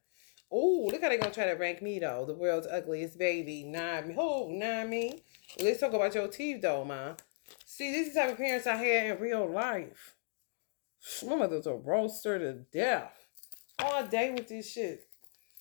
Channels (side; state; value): right; silent; digital silence